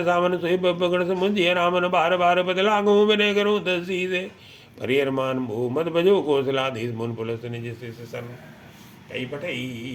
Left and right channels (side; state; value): both; identical; correlation 1.00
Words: सामन सोई पकड़ समुझिय रामन बार बार बदला गो विनय करो दसी से परिहरमान भो मत भजो कौशलाधीश मुन पुलस निज सन कई पठई